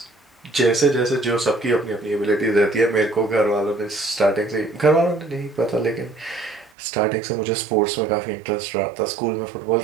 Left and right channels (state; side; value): drops out; left; at 6.7 s